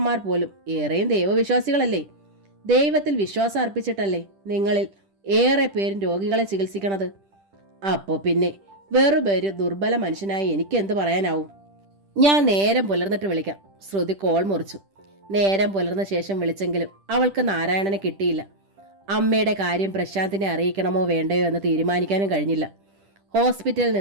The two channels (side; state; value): left; late; 10 ms